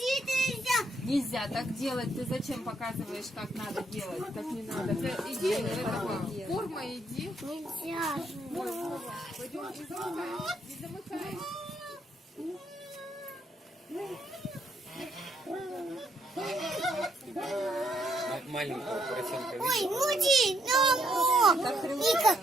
Нельзя так делать. Ты зачем показываешь, как надо делать? Так не надо. Ты иди, этого, форма иди. Нельзя. Пойдем, не замыкай. Маленького поросенка. Ой, муди, Ника,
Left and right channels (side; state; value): both; normal; correlation 0.73